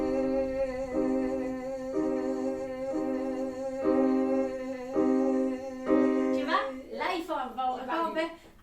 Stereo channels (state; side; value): identical; both; correlation 1.00